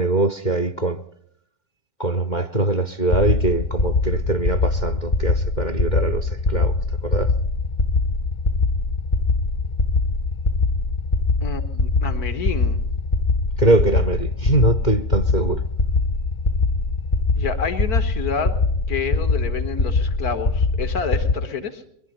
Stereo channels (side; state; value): right; late; 2.1 ms